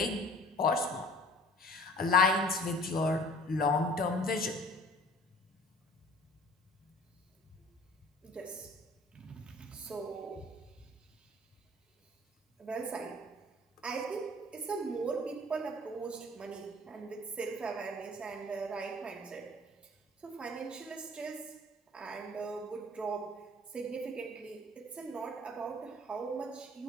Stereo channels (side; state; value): both; normal; correlation 0.49